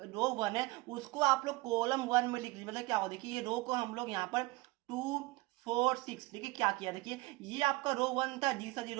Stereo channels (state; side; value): quieter; left; 21.9 dB